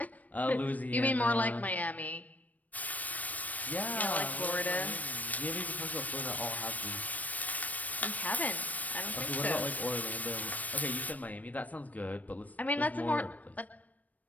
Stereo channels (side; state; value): right; late; 0.074 ms